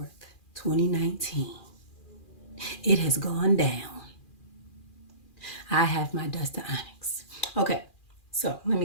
2019, it has gone down. I have my dust of Onyx. Okay, so let me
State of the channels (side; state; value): right; late; 2.4 ms